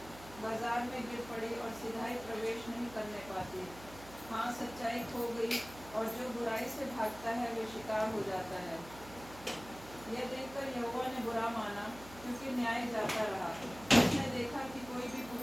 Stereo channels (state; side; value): noise; right; hum, 17 dB below the sound